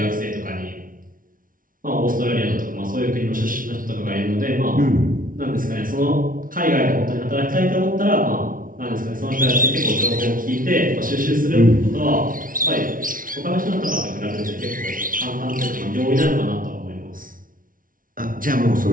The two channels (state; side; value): late; left; 0.40 ms